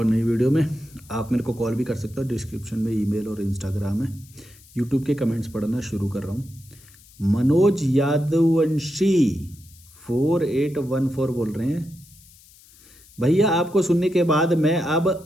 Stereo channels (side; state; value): left; noise; hiss, 25 dB below the sound